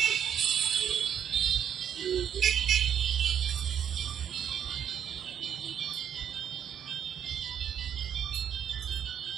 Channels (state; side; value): quieter; left; 8.9 dB